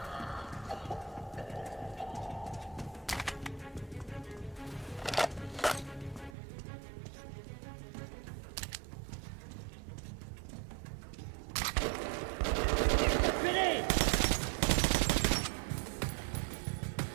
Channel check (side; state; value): left; drops out; at 6.4 s